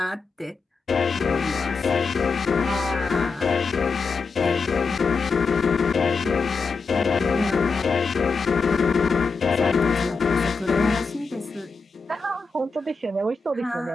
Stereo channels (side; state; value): right; quieter; 4.5 dB